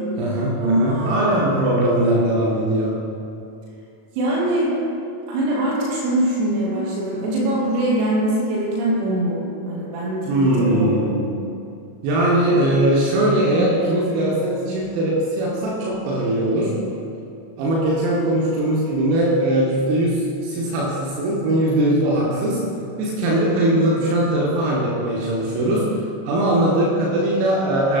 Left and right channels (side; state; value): left; late; 37 ms